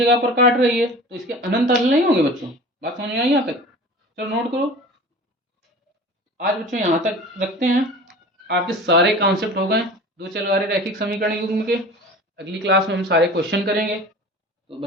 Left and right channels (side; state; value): both; normal; correlation 0.39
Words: पर काट रही है तो इसके अनंत हल नहीं होंगे बच्चों। बात समझ में आई यहाँ तक? चलो नोट करो। आज बच्चों यहाँ तक रखते हैं, आपके सारे कॉन्सेप्ट हो गए दो चल रहे रैखिक समीकरण युग्म के। अगली क्लास में हम सारे क्वेश्चन करेंगे। तो